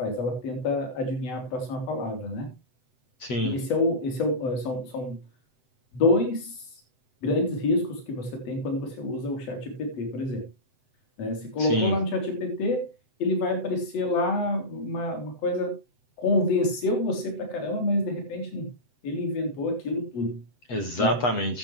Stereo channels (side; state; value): right; late; 7.9 ms